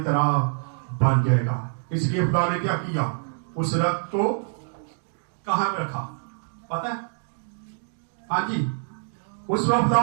तरह बन जाएगा। इसलिए खुदा ने क्या किया, उस रक्त को कहां पे रखा पता है? हाँ जी, उस वक्त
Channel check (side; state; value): left; silent; digital silence